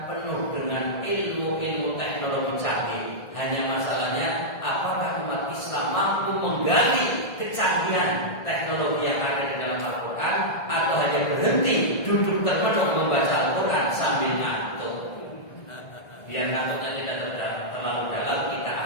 penuh dengan ilmu teknologi canggih. Hanya masalahnya apakah umat Islam mampu menggali kecanggihan teknologi yang ada di dalam Al-Quran, atau hanya berhenti duduk termenung membaca Al-Quran sambil ngantuk. Biar ngantuknya tidak terlalu dalam, kita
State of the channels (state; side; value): late; right; 1.7 ms